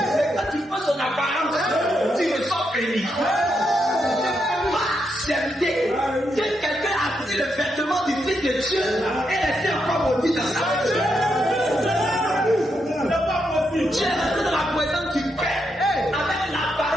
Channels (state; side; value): normal; both; correlation 0.81